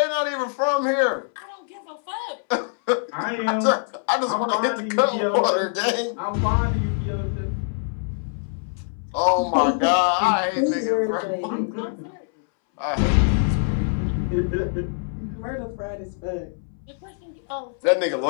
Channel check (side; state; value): right; silent; 63 dB below the other